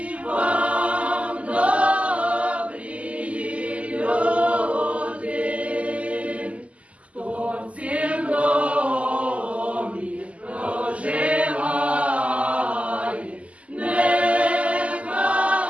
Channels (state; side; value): late; left; 0.066 ms